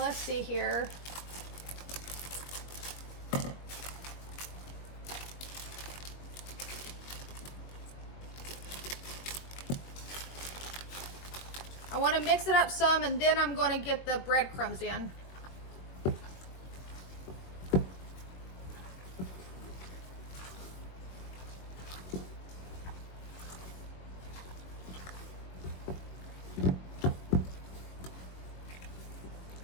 see here. I want to mix it up some, and then I'm going to get the breadcrumbs in.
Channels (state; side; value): late; right; 21 ms